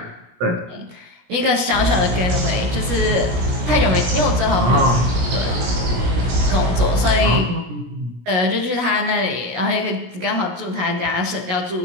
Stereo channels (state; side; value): late; left; 17 ms